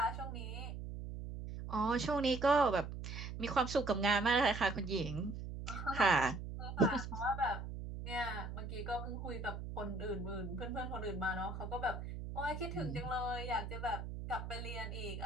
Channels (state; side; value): noise; right; hum, 7 dB below the sound